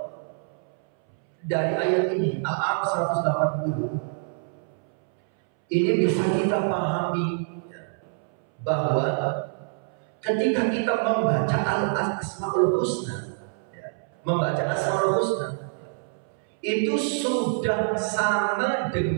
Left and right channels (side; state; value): left; silent; 61 dB below the other